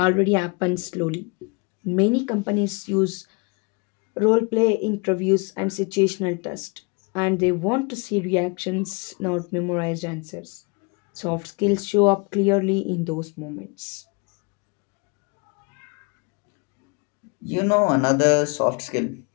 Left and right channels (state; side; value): quieter; right; 31.2 dB